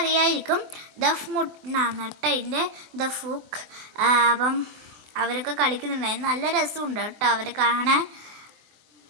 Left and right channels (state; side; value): late; left; 24 ms